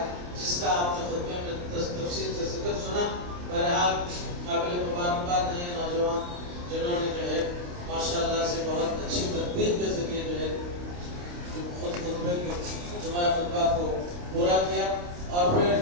جس کا آپ نے خطبے میں تفصیل سے ذکر سنا۔ بہرحال قابل مبارکباد ہیں نوجوان جنہوں نے جو ہے ماشاءاللہ سے بہت اچھی تدبیر کے ذریعے جو ہے خود خطبے کے جمعہ خطبہ کو پورا کیا اور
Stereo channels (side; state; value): left; late; 28 ms